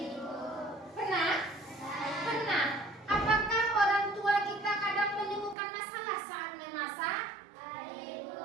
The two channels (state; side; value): drops out; left; at 5.6 s